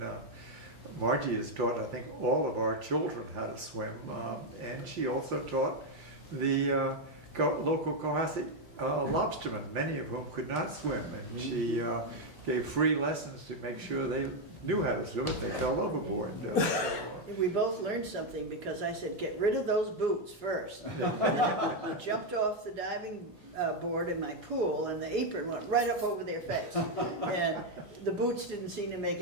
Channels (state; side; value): late; right; 1.2 ms